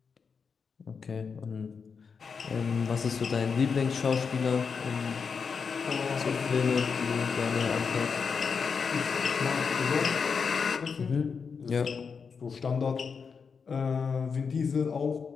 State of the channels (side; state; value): right; quieter; 5.7 dB